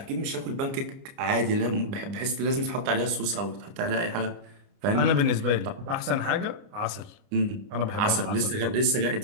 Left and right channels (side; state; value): left; late; 30 ms